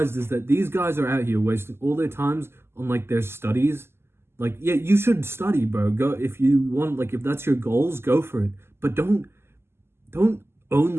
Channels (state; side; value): late; left; 0.12 ms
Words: is that these guys are out here wasting all their times on like their studies. Like, yeah, you should study, bro. Go if you want, like if that's your goals, go for it. But don't